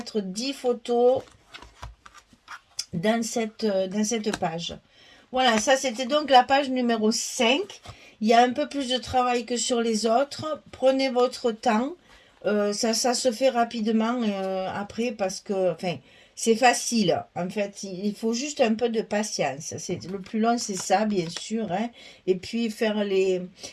10 photos dans cette page. Voilà, ça c'était donc la page numéro 5. Il y a un peu plus de travail que sur les autres. Prenez votre temps. Ça se fait rapidement après parce que c'est facile. En fait, il faut juste un peu de patience. Le plus long, c'est ça, bien sûr. Hein. Et puis faire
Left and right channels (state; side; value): identical; both; correlation 1.00